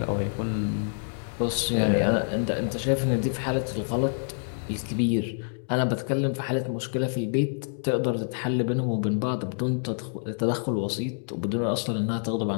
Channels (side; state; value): right; silent; digital silence